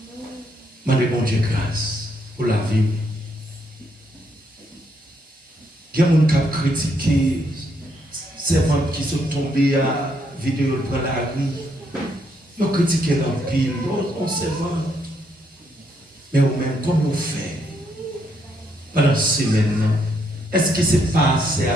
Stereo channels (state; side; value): normal; both; correlation 0.74